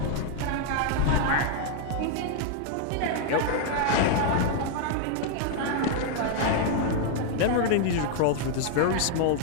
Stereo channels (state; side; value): different; both; correlation 0.00